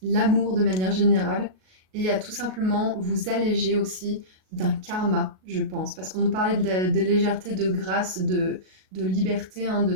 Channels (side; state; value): left; late; 38 ms